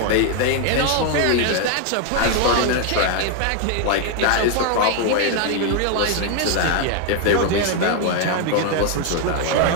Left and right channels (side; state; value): both; different; correlation 0.00